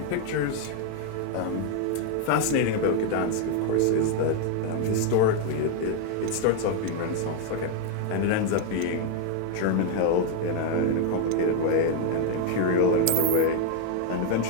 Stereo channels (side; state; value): both; different; correlation 0.01